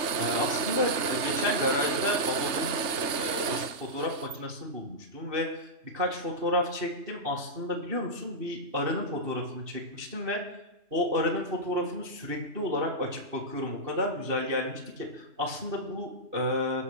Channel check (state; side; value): late; left; 3.3 ms